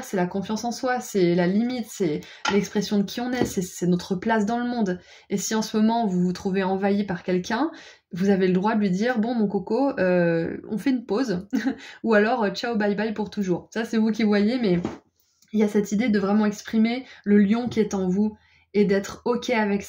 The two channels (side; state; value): both; identical; correlation 1.00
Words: c'est la confiance en soi, c'est la limite, c'est l'expression de qui on est, c'est notre place dans le monde. Et si en ce moment vous vous trouvez envahi par quelqu'un, vous avez le droit de lui dire « Bon, mon coco, on fait une pause » ou alors « Ciao, bye bye pour toujours ». Ça, c'est vous qui voyez, mais il y a cette idée de vraiment exprimer le lion qui est en vous et d'être OK avec